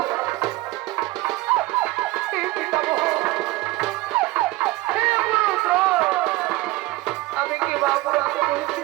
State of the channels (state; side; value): quieter; left; 19.5 dB